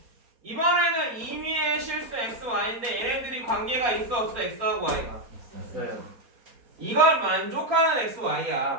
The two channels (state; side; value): late; left; 4.2 ms